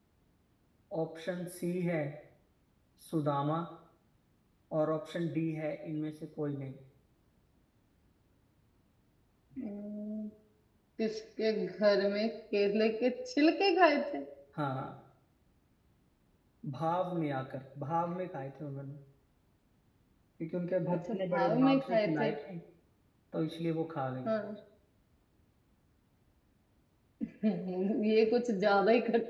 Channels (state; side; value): identical; both; correlation 1.00